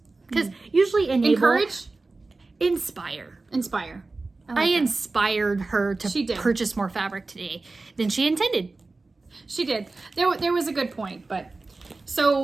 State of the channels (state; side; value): quieter; left; 3.5 dB